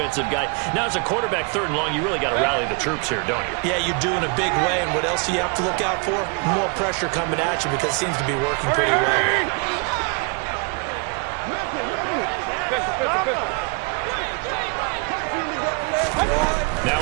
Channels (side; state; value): left; quieter; 34.6 dB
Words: guy. Now, as a quarterback, 3rd and long, you really got to rally the troops here, don't you? Yeah, you do in a big way. And what else do you have to look out for? More pressure coming at you because it seems to be working pretty well. Now